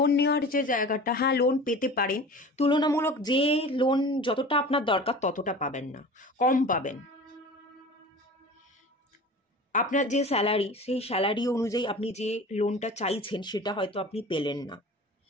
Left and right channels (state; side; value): normal; both; correlation 0.38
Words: নেওয়ার যে জায়গাটা, হ্যাঁ লোন পেতে পারেন, তুলনামূলক যে লোন যতটা আপনার দরকার ততটা পাবেন না, কম পাবেন। আপনার যে স্যালারি, সেই স্যালারি অনুযায়ী আপনি যে লোনটা চাইছেন সেটা হয়তো আপনি পেলেন না,